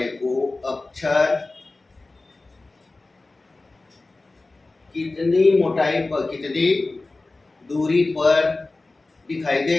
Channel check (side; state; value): right; quieter; 3.2 dB